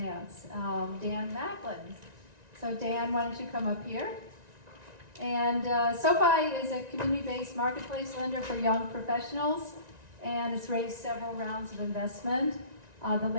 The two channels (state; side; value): late; left; 1.9 ms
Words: Dan Macklin. So Dan, why don't you come up here? And SoFi is a community-based marketplace lender for young professionals, and it's raised several rounds of investment, the